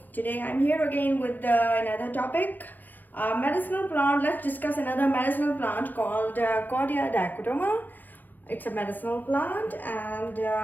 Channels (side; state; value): right; late; 0.086 ms